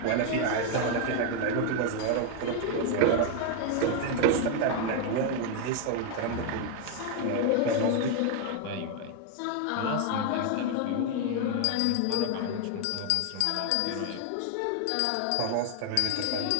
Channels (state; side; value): different; both; correlation 0.00